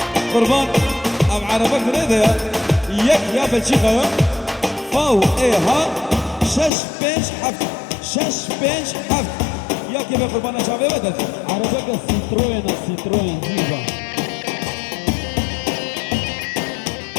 بلجيكا فاو ها شش بنش حفت شش بنش حفت يا كيف قربانا شعبي بدل عربك السيتروين جيبا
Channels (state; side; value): drops out; right; at 6.7 s